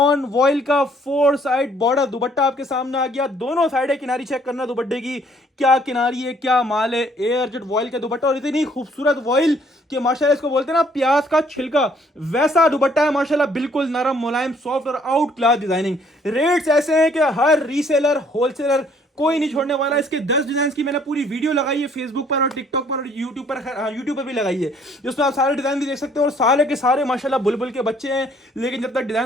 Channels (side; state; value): both; normal; correlation 0.62